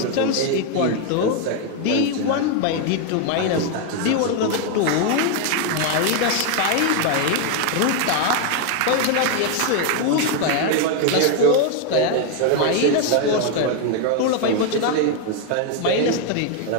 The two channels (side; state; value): both; different; correlation 0.01